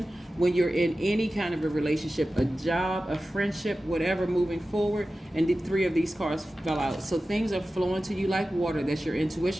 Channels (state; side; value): normal; both; correlation 0.95